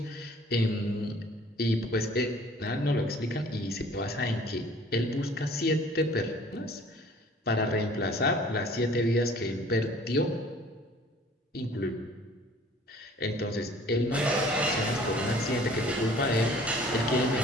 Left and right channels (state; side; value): normal; both; correlation 0.52